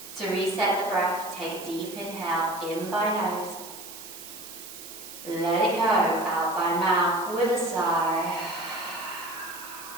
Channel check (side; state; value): right; noise; hiss, 13 dB below the sound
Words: To reset the breath, take a deep inhale in by nose. Let it go out by mouth with a sigh.